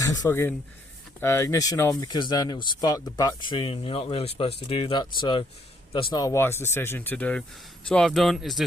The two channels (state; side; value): normal; both; correlation 0.69